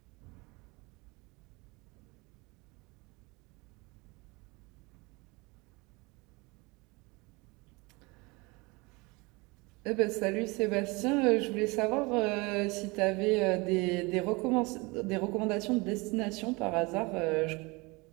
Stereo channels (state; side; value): quieter; left; 25.9 dB